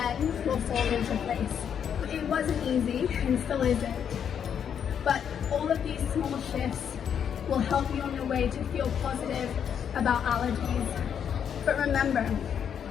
will fall into place. It wasn't easy and still isn't, but all of these small shifts will help you on your way to feel positive about allergies. But remember,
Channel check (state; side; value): quieter; right; 8.2 dB